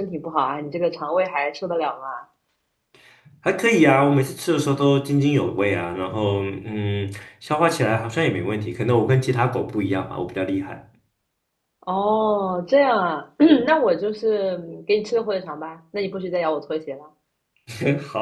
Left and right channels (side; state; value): both; identical; correlation 1.00